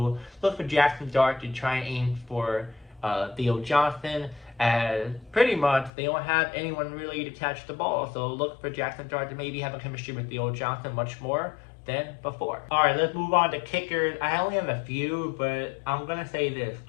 look for Jackson Dart to try and aim for Theo Johnson. As pretty much they don't have anyone really to catch the ball. So look for Jackson Dart to maybe have a chemistry with Theo Johnson much more than before. Alright, let's move on to kickers. I only have a few, but I'm going to say this.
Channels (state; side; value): drops out; right; at 5.9 s